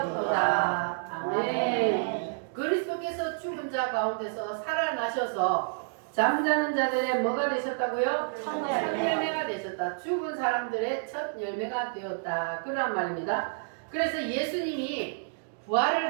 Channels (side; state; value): left; silent; digital silence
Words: 아멘. 그리스도께서 죽은 자 가운데서 살아나셔서 잠자는 자들의 뭐가 되셨다고요? 첫 열매가 되셨다. 죽은 사람들의 첫 열매가 되었다. 그런 말입니다. 그래서 예수님이